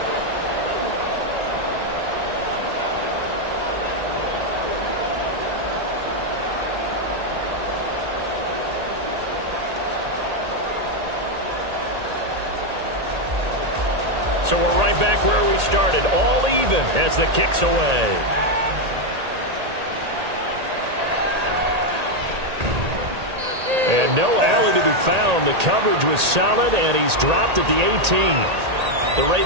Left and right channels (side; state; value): left; late; 1.8 ms